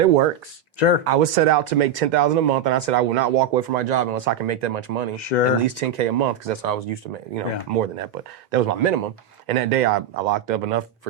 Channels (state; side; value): quieter; left; 7.4 dB